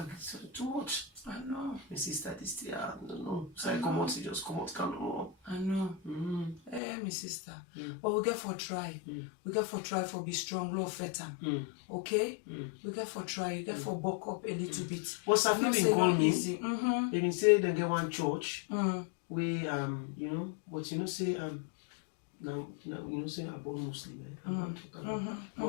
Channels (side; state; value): right; drops out; at 6.8 s